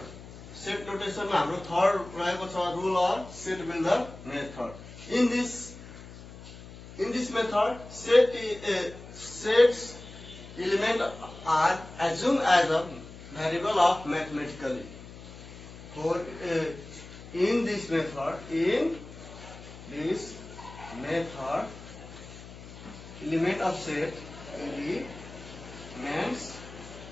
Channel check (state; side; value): noise; left; hum, 15 dB below the sound